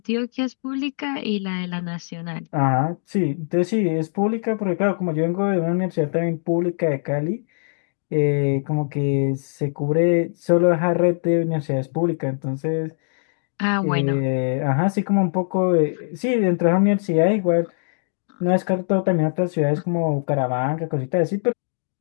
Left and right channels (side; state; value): right; silent; digital silence